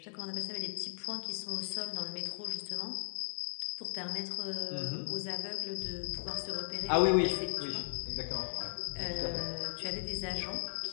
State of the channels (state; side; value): silent; right; digital silence